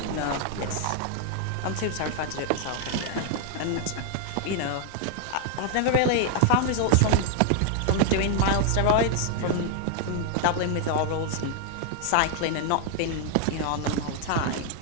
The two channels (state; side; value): different; both; correlation 0.00